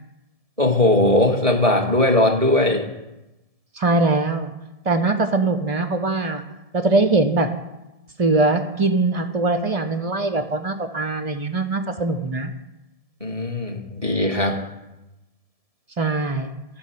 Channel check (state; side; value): late; left; 1.7 ms